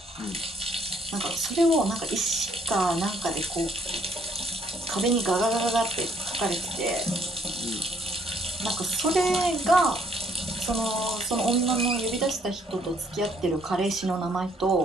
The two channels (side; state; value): both; normal; correlation 0.66